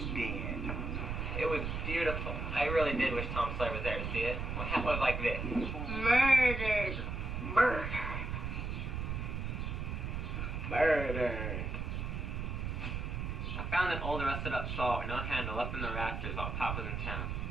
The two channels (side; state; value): right; noise; rumble, 3 dB below the sound